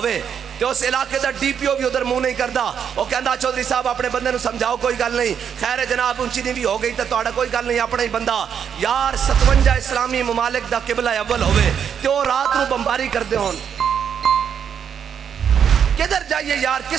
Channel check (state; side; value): quieter; left; 7.9 dB